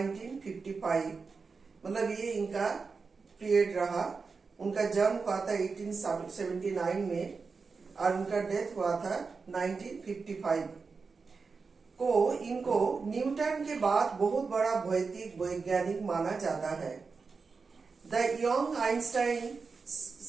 मतलब ये इनका पीरियड रहा। उनका जन्म हुआ था 1879 में और उनका डेथ हुआ था 1955 को। इनको न्यूटन के बाद बहुत बड़ा भौतिक वैज्ञानिक माना जाता है। द यंग आइंस्टाइन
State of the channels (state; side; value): quieter; left; 4.7 dB